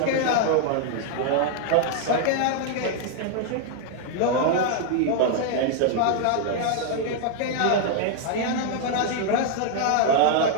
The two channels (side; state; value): both; different; correlation 0.00